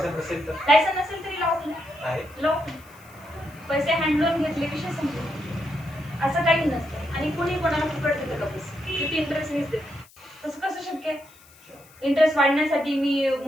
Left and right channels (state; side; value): noise; left; hiss, 26 dB below the sound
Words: नसेल तर, लायसन्स नसेल तरी लॉफुल आहे. लॉफुल. पैसे हँड लोन घेतले विषय संपला, असं काही नसतं. आणि कुणी कोणाला फुकट देतं का पैसे? किती इंटरेस्ट मीच देते, तसं कसं शक्य आहे? इंटरेस्ट वाढण्यासाठी मी